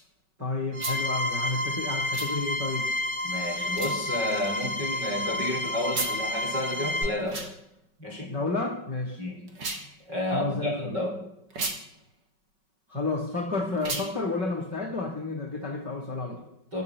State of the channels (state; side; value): late; left; 5.3 ms